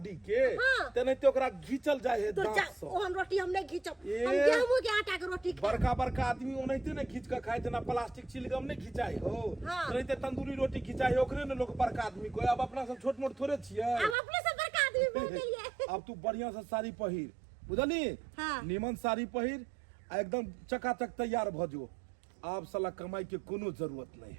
के, तेनाहिते ओकरा घीचल जाए है दांत से। ओहन रोटी हम नहीं घीचब, हम गेहूं के आटा के रोटी खाए। बड़का आदमी ओनाहिते नहीं घीच के खाए, जना प्लास्टिक चिलगम नहीं घिचाई हो, तेनाहिते तंदूरी रोटी घिचाई ओकरे ने लोग बड़का आदमी को। अब अपना सब छोट मोट थोड़े छियै, अब अपने से बड़का आदमी बोल गेलिए। अब तू बढ़िया से साड़ी पहिर, बुझली, निमन साड़ी पहिर, एकदम चकाचक तैयार भ जो। आप साला कमाई के कोनो जरूरत नहीं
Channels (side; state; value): left; drops out; at 14.2 s